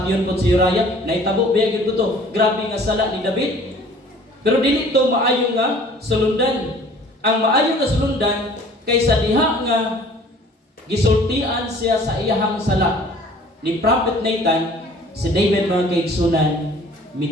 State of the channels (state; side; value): normal; both; correlation 0.51